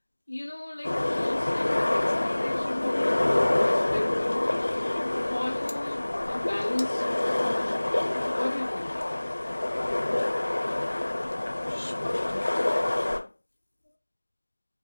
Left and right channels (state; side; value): inverted; both; correlation -1.00